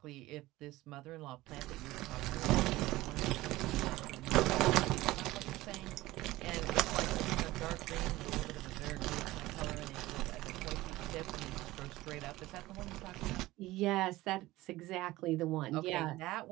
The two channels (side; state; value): left; quieter; 18.0 dB